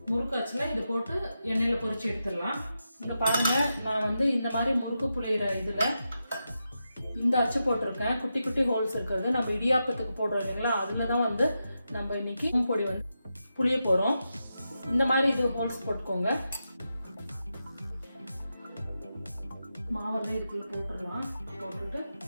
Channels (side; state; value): both; inverted; correlation -0.88